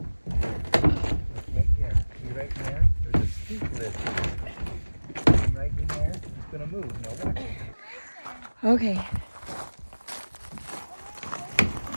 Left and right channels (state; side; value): inverted; both; correlation -1.00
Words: Look right there. See right there? There's a skink lizard. Come right in there. It's gonna move. Now watch it. Okay.